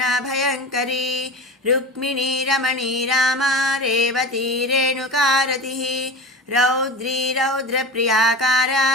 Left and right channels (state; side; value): normal; both; correlation 0.30